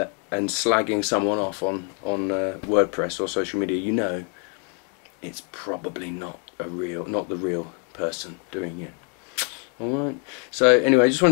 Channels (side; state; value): right; quieter; 38.9 dB